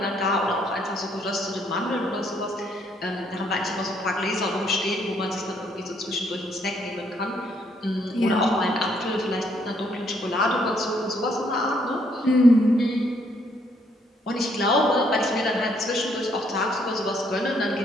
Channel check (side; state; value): both; normal; correlation 0.69